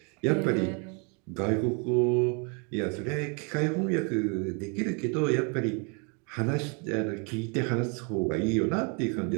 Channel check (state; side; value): quieter; left; 34.8 dB